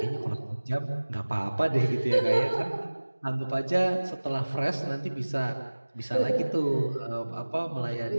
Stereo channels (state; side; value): inverted; both; correlation -1.00